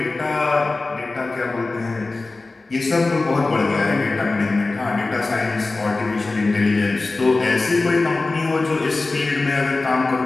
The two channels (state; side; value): quieter; right; 3.4 dB